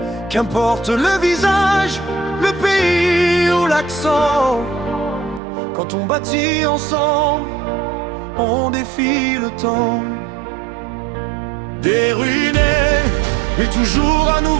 Qu'importe le visage, le pays ou l'accent, quand on bâtit ensemble, on défie le temps. Des ruinés, mais toujours un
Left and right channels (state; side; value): drops out; left; at 5.4 s